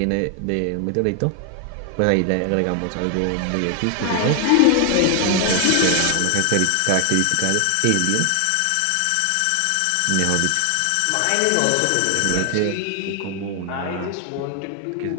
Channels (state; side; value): different; both; correlation 0.00